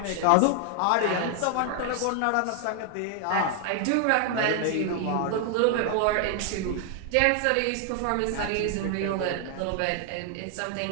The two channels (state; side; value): different; both; correlation 0.00